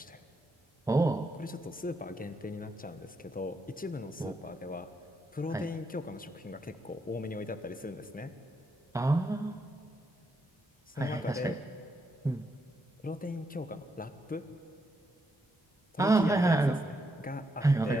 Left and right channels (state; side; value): normal; both; correlation 0.80